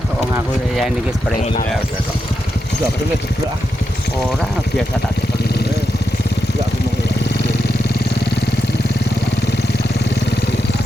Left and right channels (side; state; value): both; normal; correlation 0.86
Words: ngaku ya ini ki spray. enggak bener jeblok Orang biasa tak seperti ini. enggak aku mau